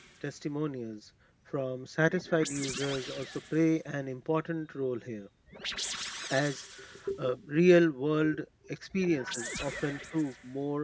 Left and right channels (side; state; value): both; identical; correlation 1.00